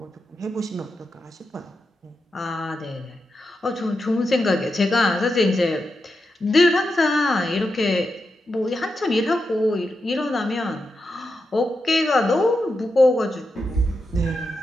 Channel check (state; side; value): normal; both; correlation 0.87